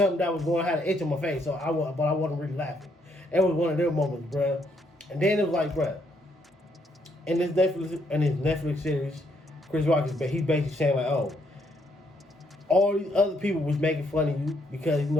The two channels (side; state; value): both; normal; correlation 0.73